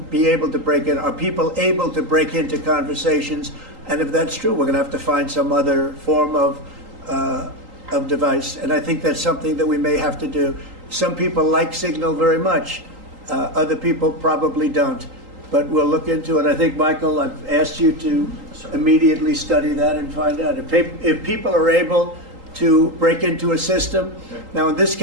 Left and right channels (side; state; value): left; late; 3.8 ms